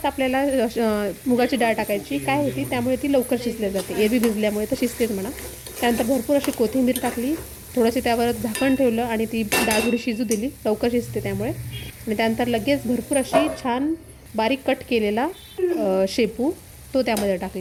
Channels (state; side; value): identical; both; correlation 1.00